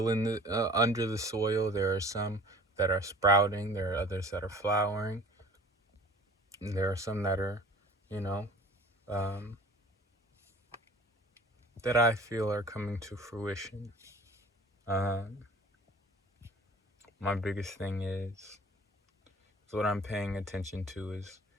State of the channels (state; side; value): normal; both; correlation 0.47